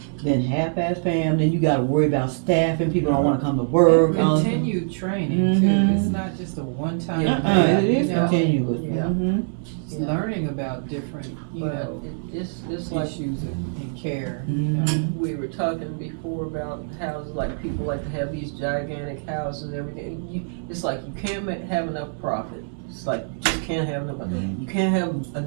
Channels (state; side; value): silent; left; 60 dB below the other